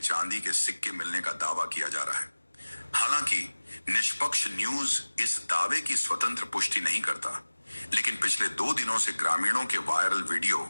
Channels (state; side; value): inverted; both; correlation -1.00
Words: के सिक्के मिलने का दावा किया जा रहा है। हालांकि निष्पक्ष न्यूज इस दावे की स्वतंत्र पुष्टि नहीं करता, लेकिन पिछले 2 दिनों से ग्रामीणों के वायरल वीडियो